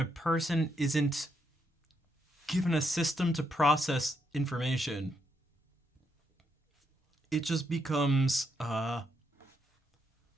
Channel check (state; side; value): normal; both; correlation 0.78